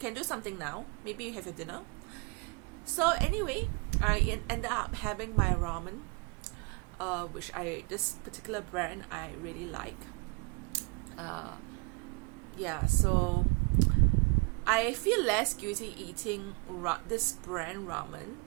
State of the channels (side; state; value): left; quieter; 32.5 dB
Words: do something now. Maybe you have your dinner. So anyway, I ended up having my ramen, which this particular brand I really like. So I feel less guilty eating this brand ramen